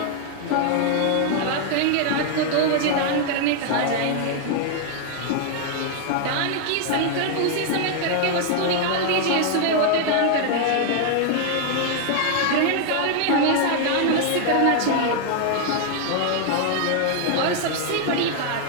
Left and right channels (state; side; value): different; both; correlation 0.00